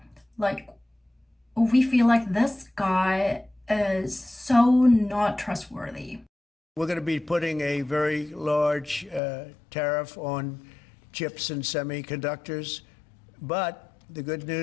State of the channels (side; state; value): right; drops out; at 9.2 s